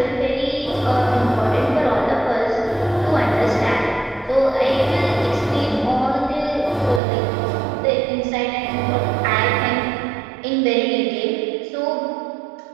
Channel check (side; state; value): left; drops out; at 7.0 s